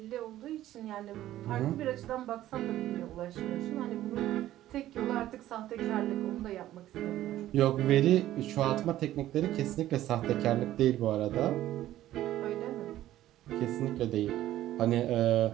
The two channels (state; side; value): quieter; left; 13.8 dB